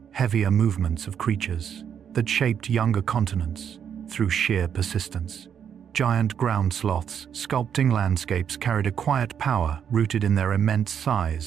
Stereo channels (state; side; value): quieter; left; 8.2 dB